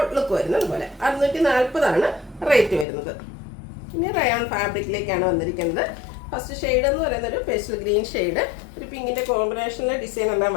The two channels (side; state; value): right; drops out; at 2.9 s